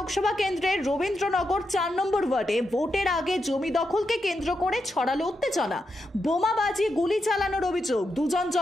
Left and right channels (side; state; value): both; normal; correlation 0.85